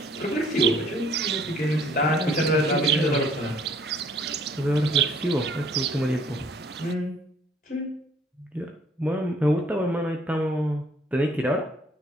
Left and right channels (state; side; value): normal; both; correlation 0.60